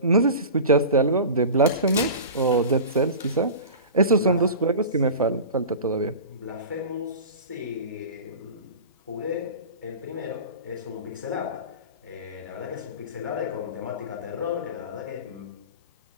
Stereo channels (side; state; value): both; inverted; correlation -0.33